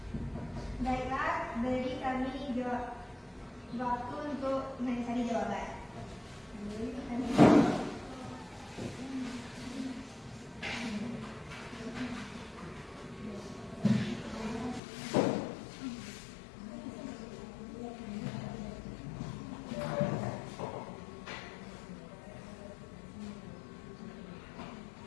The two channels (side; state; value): right; drops out; at 14.8 s